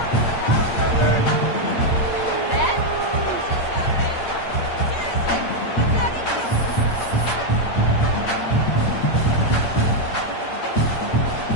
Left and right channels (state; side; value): late; right; 8.7 ms